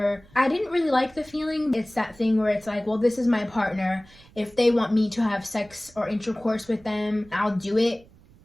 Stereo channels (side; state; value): right; noise; rumble, 26 dB below the sound